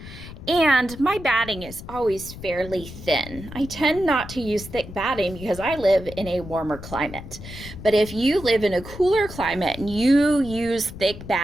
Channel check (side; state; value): left; noise; rumble, 13 dB below the sound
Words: And my batting is always fairly thin. I tend not to use thick batting because I live in a warmer climate. But if you live in a cooler climate and you use thick